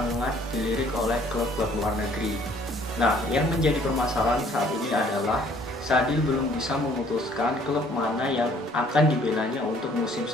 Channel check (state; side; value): normal; both; correlation 0.59